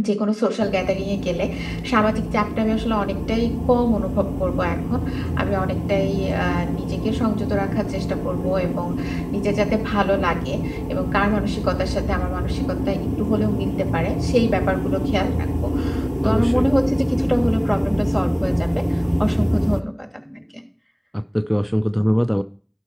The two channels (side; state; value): both; identical; correlation 1.00